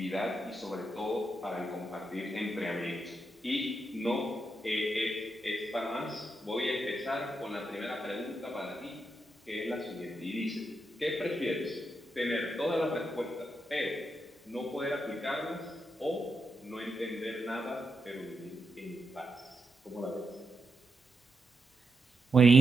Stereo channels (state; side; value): normal; both; correlation 0.84